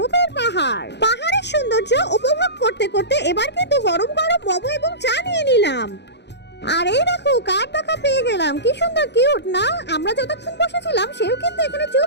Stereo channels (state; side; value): late; right; 0.50 ms